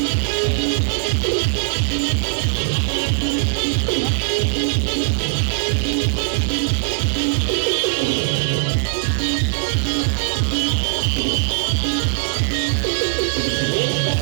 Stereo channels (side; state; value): left; silent; 58 dB below the other